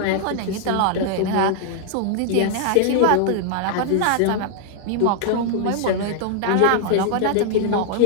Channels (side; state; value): both; different; correlation 0.00